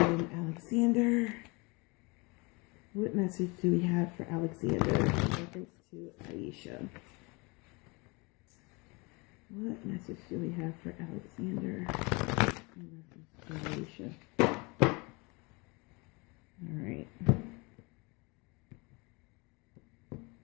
Alexander. What message do we have for Alexander in reference to Aisha? What message do we have for Alexander in reference to Aisha? All right.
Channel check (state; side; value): quieter; right; 27.6 dB